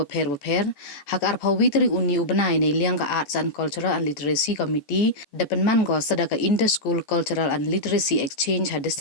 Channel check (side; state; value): right; late; 14 ms